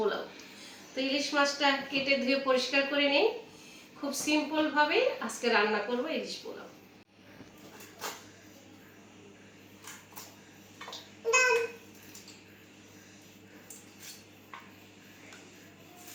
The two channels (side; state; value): both; identical; correlation 1.00